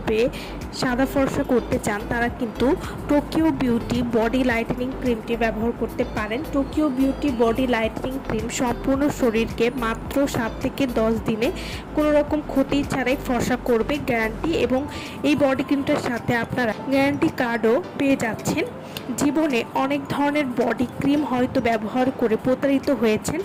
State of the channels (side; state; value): both; identical; correlation 1.00